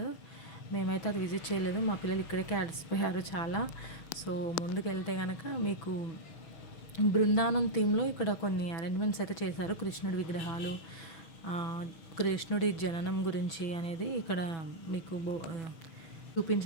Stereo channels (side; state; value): right; late; 6.1 ms